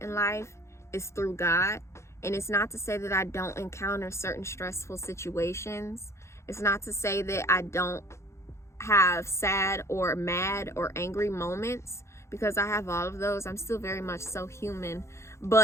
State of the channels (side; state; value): right; late; 0.13 ms